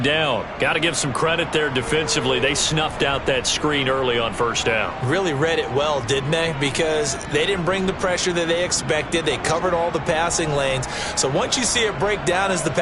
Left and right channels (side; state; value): both; identical; correlation 1.00